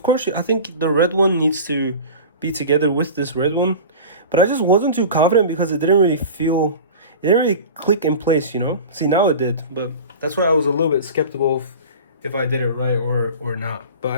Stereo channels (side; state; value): both; inverted; correlation -0.35